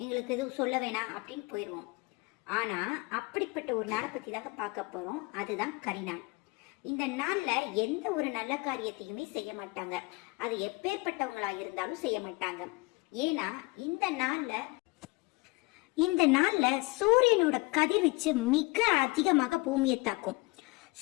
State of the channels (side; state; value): right; quieter; 25.8 dB